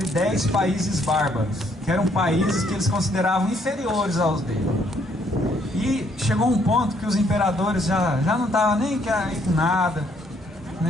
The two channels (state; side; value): normal; both; correlation 0.68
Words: 10 países bárbaros, que eram países que eles consideravam inferiores aos deles. E chegou um ponto que os imperadores já não estavam nem aí com nada,